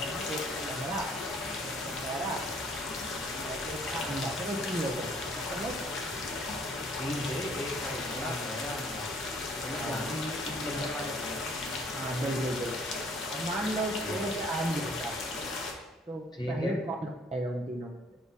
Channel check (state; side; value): normal; both; correlation 0.59